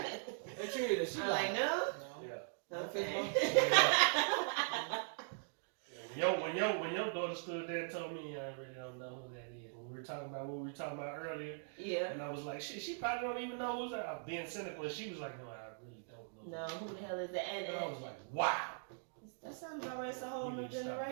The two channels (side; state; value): left; silent; digital silence